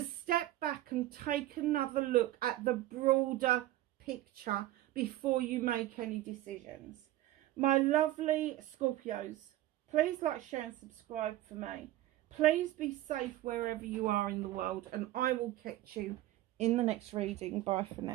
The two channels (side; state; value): left; quieter; 15.3 dB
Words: step back and take another look at the broader picture before you make any decisions. My lovely Scorpios, please like, share and subscribe for me. Please be safe wherever you are in the world, and I will catch you in the next reading. Bye for